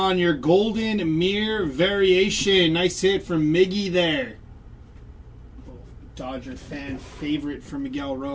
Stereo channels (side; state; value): both; identical; correlation 1.00